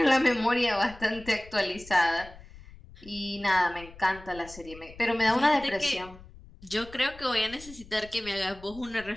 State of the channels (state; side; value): noise; left; rumble, 19 dB below the sound